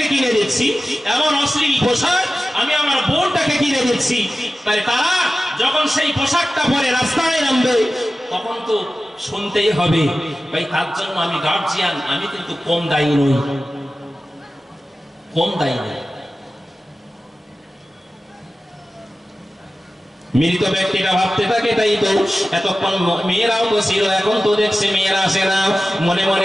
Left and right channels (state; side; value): normal; both; correlation 0.95